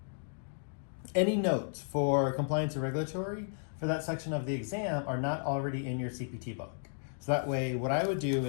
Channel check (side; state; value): right; silent; digital silence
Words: any notes for Compliance and Regulatory for that section of the exam are not already in your CPT book. So that way, what I would do